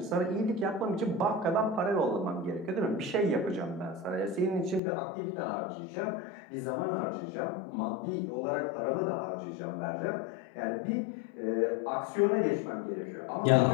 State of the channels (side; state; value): right; drops out; at 4.8 s